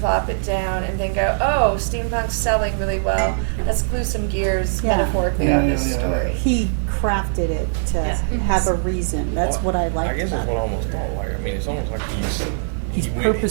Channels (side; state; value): left; silent; digital silence